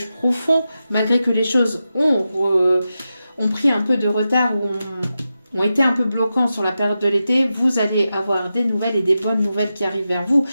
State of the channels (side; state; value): both; inverted; correlation -0.90